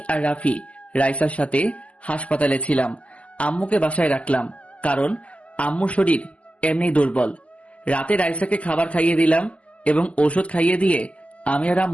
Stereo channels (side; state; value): right; late; 0.062 ms